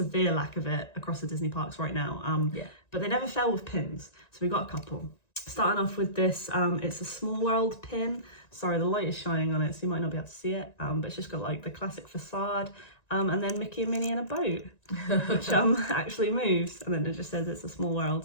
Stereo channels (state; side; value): late; right; 1.9 ms